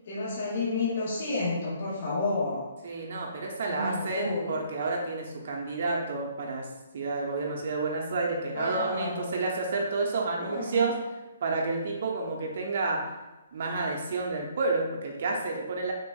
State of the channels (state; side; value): inverted; both; correlation -0.62